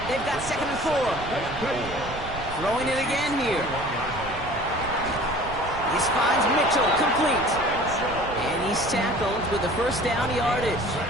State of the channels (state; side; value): noise; right; rumble, 11 dB below the sound